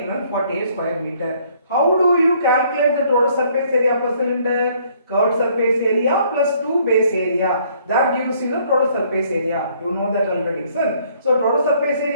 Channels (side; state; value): both; inverted; correlation -0.63